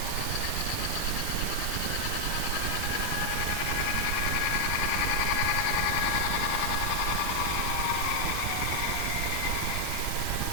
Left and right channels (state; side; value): different; both; correlation 0.00